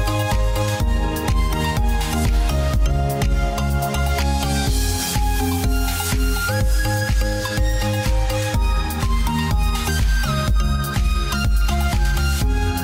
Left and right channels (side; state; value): both; identical; correlation 1.00